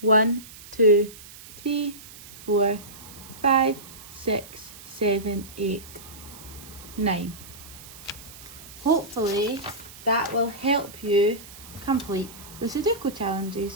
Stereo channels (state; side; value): noise; right; hiss, 17 dB below the sound